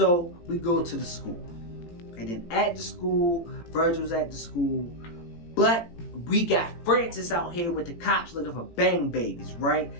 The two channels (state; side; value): late; right; 18 ms